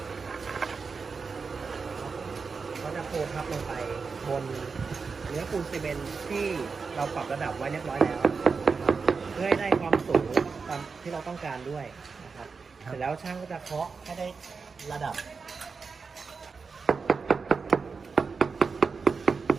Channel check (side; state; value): left; quieter; 5.0 dB